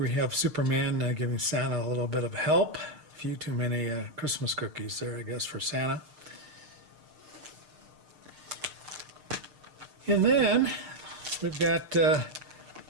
we have Superman giving Santa a little bit of help. A few too many Christmas cookies there, I guess, for Santa. And then we've got a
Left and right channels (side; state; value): left; late; 6.6 ms